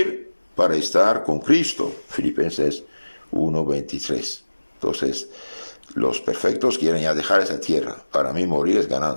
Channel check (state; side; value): inverted; both; correlation -1.00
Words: para estar con Cristo. Filipenses 1:23. Entonces, los perfectos quieren ya dejar esa tierra. Para mí morir es